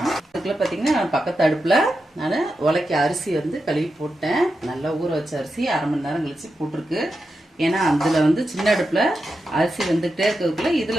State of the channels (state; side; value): normal; both; correlation 0.89